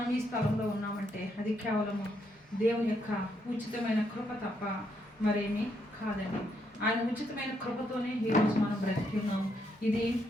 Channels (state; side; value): normal; both; correlation 0.76